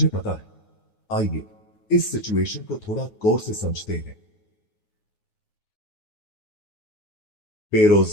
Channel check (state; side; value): late; right; 9.5 ms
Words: पता है। आइए इस सिचुएशन को थोड़ा गौर से समझते हैं।